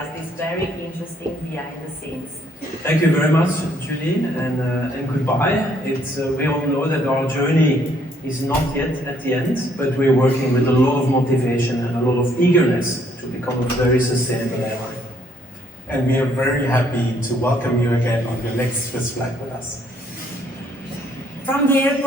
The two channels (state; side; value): normal; both; correlation 0.66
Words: this very interesting behind the scenes. Thank you very much, Julie, and goodbye. We all know that our journey is not yet at the end, but we're working with a lot of motivation and a lot of eagerness to become a very sustainable airline. And we are very happy to welcome you again on your next Swiss flight with us. From the